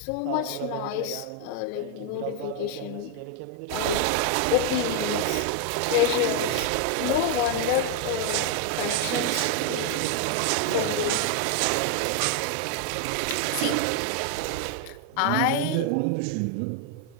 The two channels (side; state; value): both; different; correlation 0.00